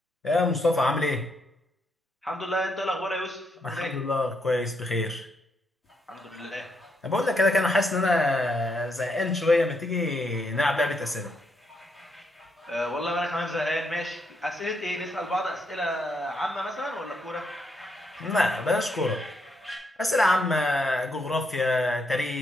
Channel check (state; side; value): normal; both; correlation 0.77